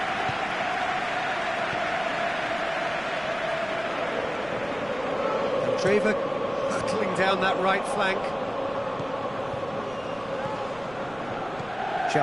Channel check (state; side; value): noise; right; rumble, 21 dB below the sound